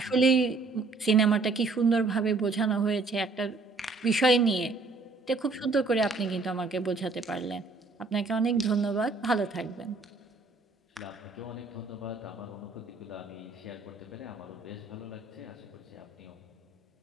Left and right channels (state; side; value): quieter; left; 3.8 dB